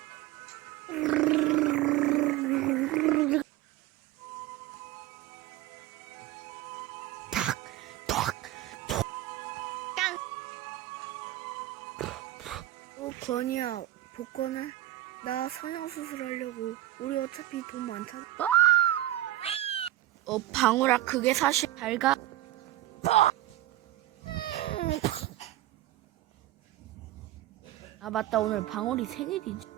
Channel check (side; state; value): left; quieter; 14.9 dB